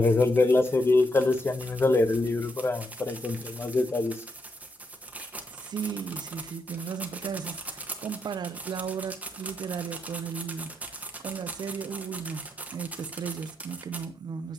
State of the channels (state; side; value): normal; both; correlation 0.80